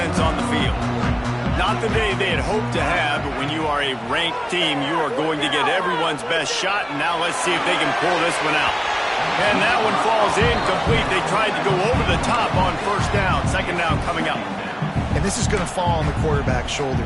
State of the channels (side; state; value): both; identical; correlation 1.00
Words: on the field. Not the day they had hoped to have, but when you are a ranked team, you are going to get everyone's best shot, and now let's see if they can pull this one out. And that one falls incomplete. They tried to go over the top on first down. Second down coming up. And this is going to fall on the quarterback's